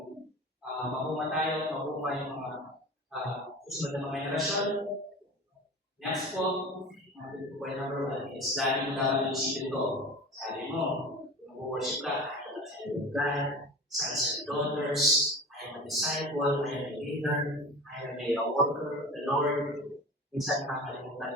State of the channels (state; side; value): normal; both; correlation 0.34